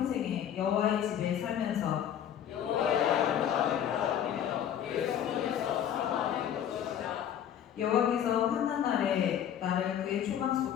여호와의 집에 살면서 여호와께서 환난 날에 나를 그의 초막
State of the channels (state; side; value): quieter; right; 9.8 dB